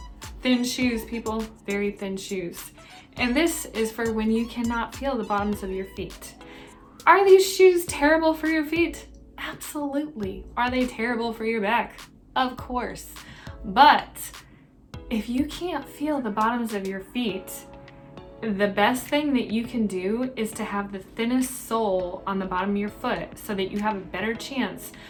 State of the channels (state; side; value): identical; both; correlation 1.00